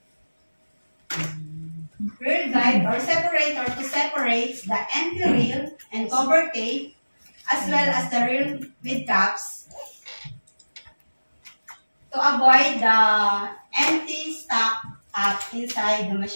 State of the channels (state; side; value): inverted; both; correlation -1.00